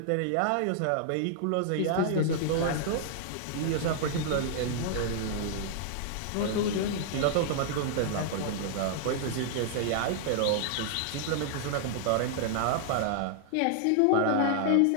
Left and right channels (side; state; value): both; different; correlation -0.01